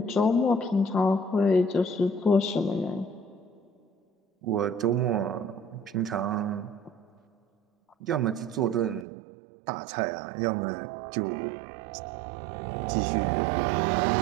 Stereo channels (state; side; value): drops out; left; at 9.1 s